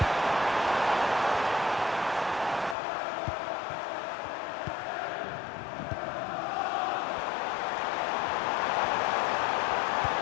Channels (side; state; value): right; drops out; at 2.8 s